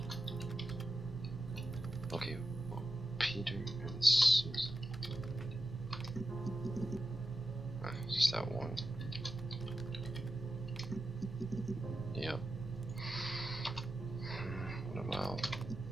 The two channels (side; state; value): right; noise; hum, 29 dB below the sound